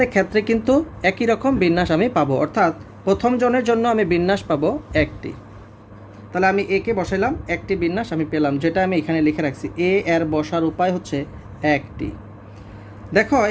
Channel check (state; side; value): identical; both; correlation 1.00